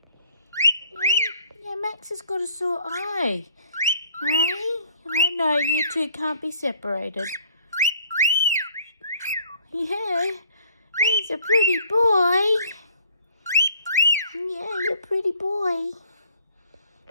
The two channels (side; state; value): both; inverted; correlation -0.57